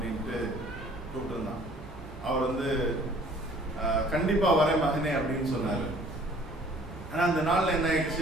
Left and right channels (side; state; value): both; normal; correlation 0.54